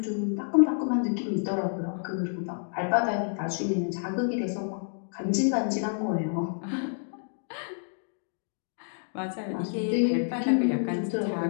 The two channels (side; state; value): right; silent; digital silence